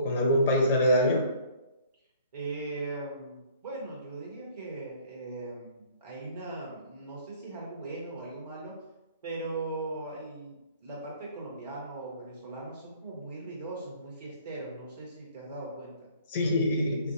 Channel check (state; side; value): inverted; both; correlation -0.55